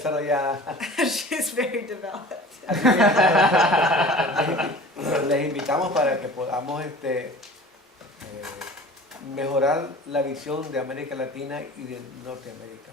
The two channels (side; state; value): both; normal; correlation 0.42